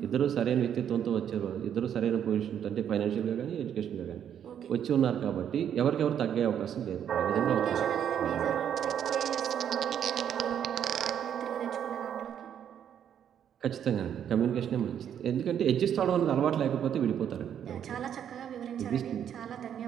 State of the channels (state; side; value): quieter; left; 9.2 dB